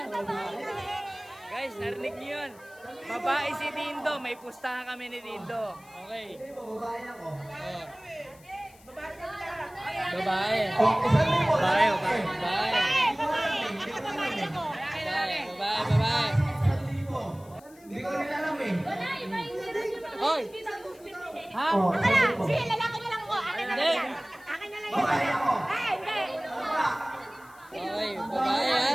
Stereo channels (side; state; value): left; noise; hiss, 26 dB below the sound